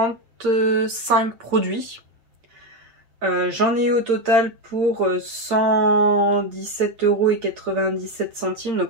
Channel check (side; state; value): left; late; 8.7 ms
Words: produits. J'en ai eu au total pour 117,97 €,